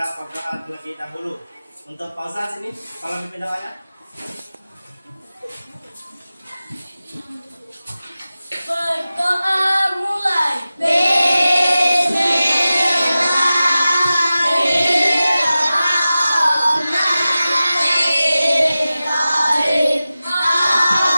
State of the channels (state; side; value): inverted; both; correlation -0.95